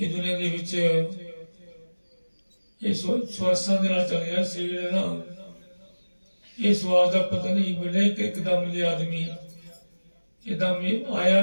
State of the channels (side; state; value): both; inverted; correlation -1.00